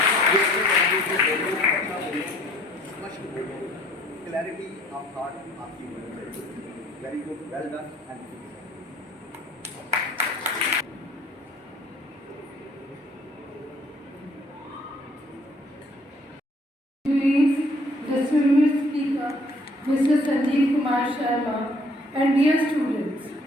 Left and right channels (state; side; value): normal; both; correlation 0.59